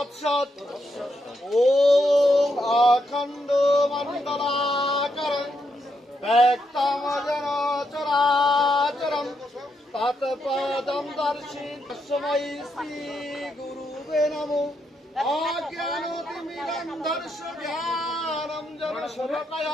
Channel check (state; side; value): normal; both; correlation 0.80